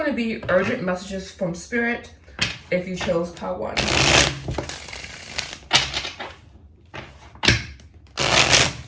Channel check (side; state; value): both; identical; correlation 1.00